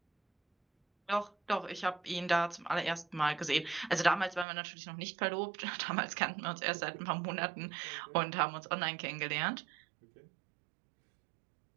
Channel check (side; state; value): left; drops out; at 4.5 s